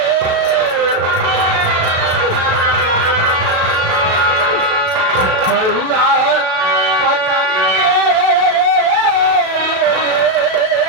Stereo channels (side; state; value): left; late; 37 ms